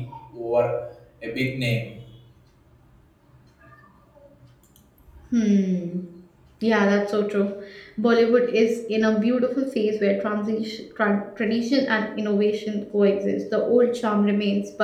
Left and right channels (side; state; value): both; identical; correlation 1.00